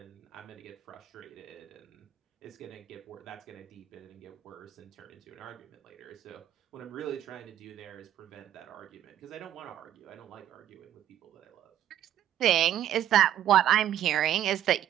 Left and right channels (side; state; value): left; quieter; 11.3 dB